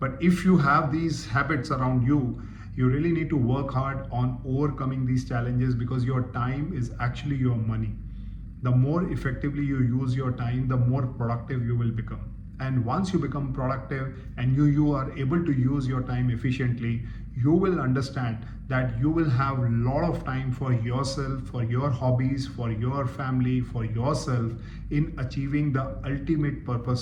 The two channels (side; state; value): both; identical; correlation 1.00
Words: if you have these habits around you, you really need to work hard on overcoming these challenges because your time is actually your money. The more effectively you use your time, the more productive you will become. And once you become productive and you are able to use your time efficiently, you will understand that you will have a lot of time for yourself, for your hobbies, for your family, for yourself in achieving the ultimate